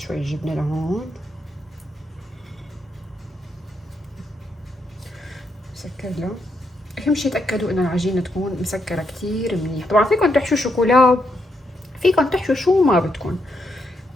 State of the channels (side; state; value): both; normal; correlation 0.79